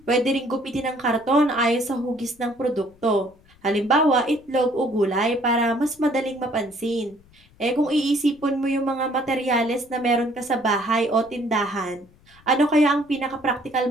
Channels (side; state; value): left; noise; rumble, 29 dB below the sound